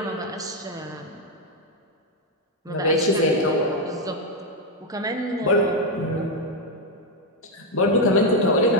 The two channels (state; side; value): normal; both; correlation 0.03